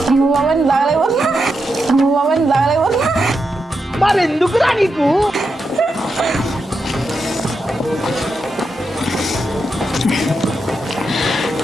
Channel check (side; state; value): both; normal; correlation 0.86